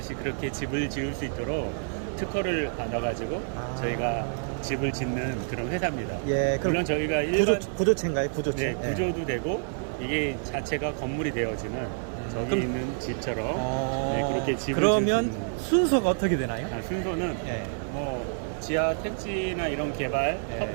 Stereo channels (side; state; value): left; silent; digital silence